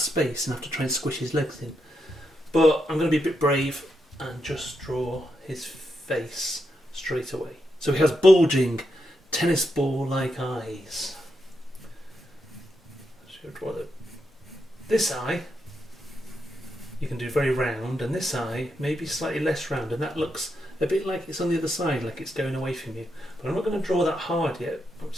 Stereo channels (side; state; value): both; normal; correlation 0.83